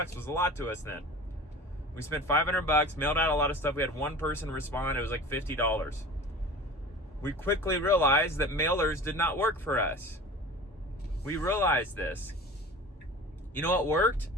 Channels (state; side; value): normal; both; correlation 0.38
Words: was a lot to us then. We spent $500, mailed out a lot of stuff. We had one person respond. It was like $50. We quickly realized that mailers did not work for us. We realized this. You know what worked